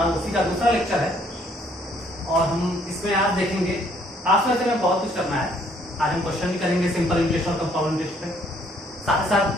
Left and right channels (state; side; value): normal; both; correlation 0.65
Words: उसी का दूसरा लेक्चर है और हम इसमें आज देखेंगे, आज वैसे में बहुत कुछ करना है। आज हम क्वेश्चन भी करेंगे सिंपल इंटरेस्ट और कंपाउंड इंटरेस्ट पे, साथ ही